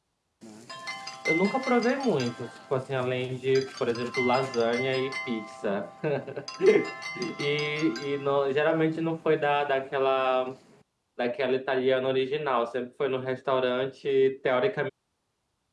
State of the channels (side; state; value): both; identical; correlation 1.00